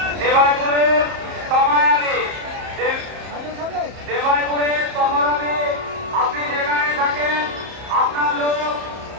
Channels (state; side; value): late; left; 31 ms